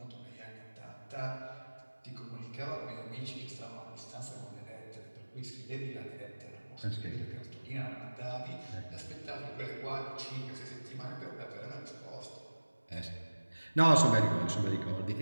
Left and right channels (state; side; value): inverted; both; correlation -1.00